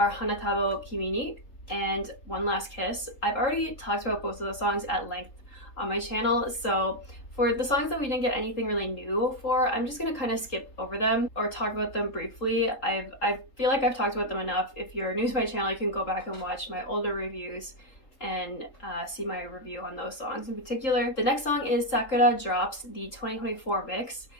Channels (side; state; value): right; late; 3.8 ms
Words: Hanatabo Kimi ni and One Last Kiss. I've already talked about both of those songs at length on my channel, so For the songs that we didn't get anything really new for, I'm just gonna kind of skip over them or talk about them briefly. I feel like I've talked about them enough. If you're new to my channel, you can go back and watch my older reviews and see my review on those songs in particular. The next song is Sakura Drops, the 2024 mix,